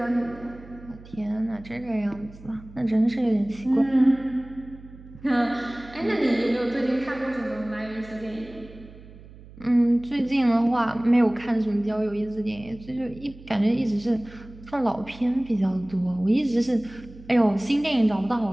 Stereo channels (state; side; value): noise; right; hum, 19 dB below the sound